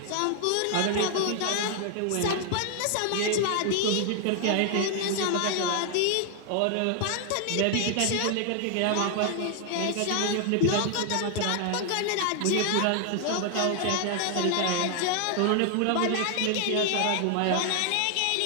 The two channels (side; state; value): both; different; correlation 0.00